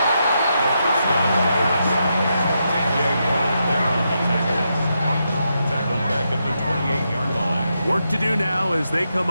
The first down. Jaguars there on the tackle. Tackled back at the 28-yard line. Work to do now as they come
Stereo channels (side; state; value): both; inverted; correlation -0.83